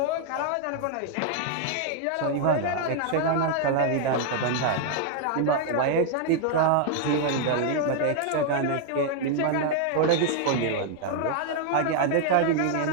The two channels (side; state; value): both; different; correlation 0.00